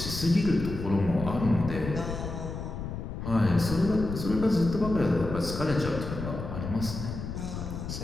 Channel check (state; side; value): noise; left; rumble, 6 dB below the sound